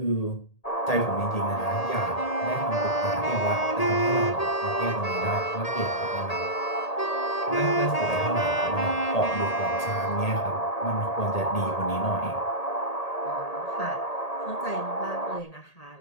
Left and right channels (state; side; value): late; right; 1.8 ms